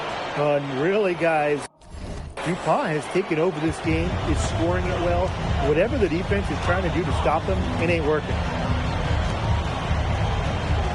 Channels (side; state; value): both; identical; correlation 1.00